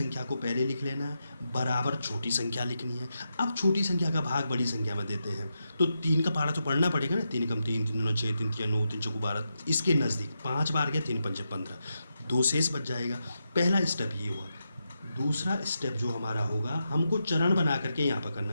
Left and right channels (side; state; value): both; inverted; correlation -0.86